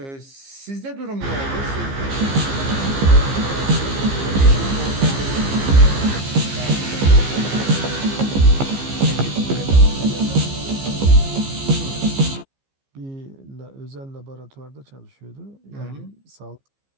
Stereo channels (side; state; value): left; late; 15 ms